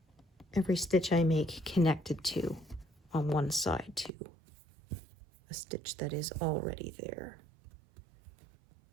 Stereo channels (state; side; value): drops out; left; at 4.1 s